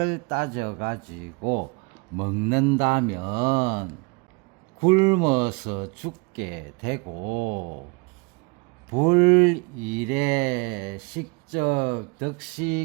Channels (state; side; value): quieter; left; 28.1 dB